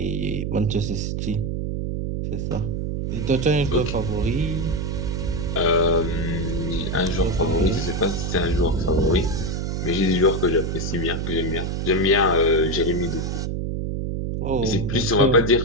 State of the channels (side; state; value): right; noise; hum, 2 dB below the sound